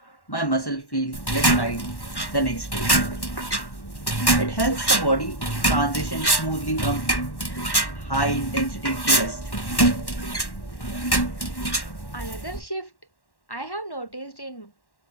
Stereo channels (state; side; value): late; right; 1.1 ms